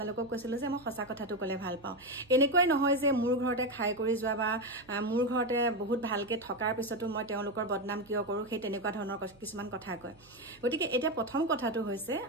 কৈছিলো যে মই সঁচা কথাটো ক'লে ভাল পাওঁ এনেকৈ নহয় যে মোৰ ঘৰতে খাই কৰি যোৱা বা মোৰ ঘৰতে বহুত ভালকে থকাৰ পিছতো মই তেওঁলোকৰ বদনাম কিয় কৰো সেই তেনেকুৱা ধৰণৰ কিছুমান কথা কয় গতিকে এটা প্ৰথম কথাটো হৈছে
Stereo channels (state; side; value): noise; right; hum, 27 dB below the sound